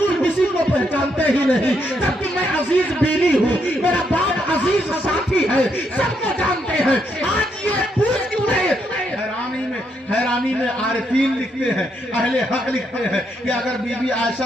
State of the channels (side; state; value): both; normal; correlation 0.77